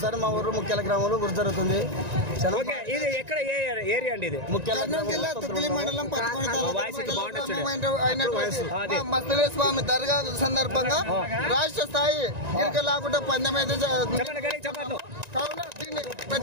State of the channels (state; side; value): late; left; 1.9 ms